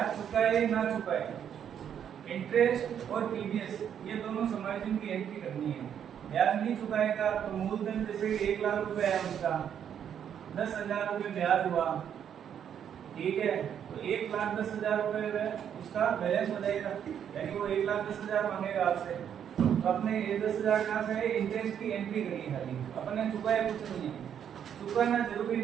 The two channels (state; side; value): quieter; left; 8.8 dB